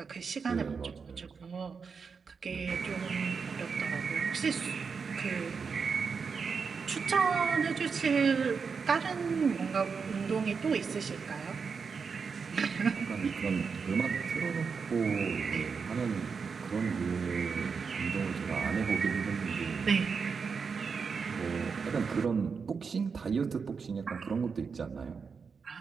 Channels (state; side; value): quieter; left; 5.5 dB